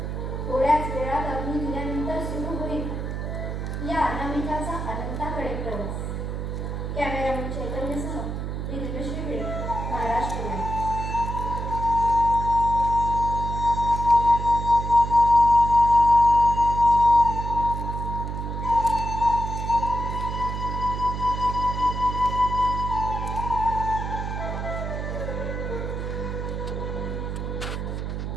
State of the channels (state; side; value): noise; right; hum, 4 dB below the sound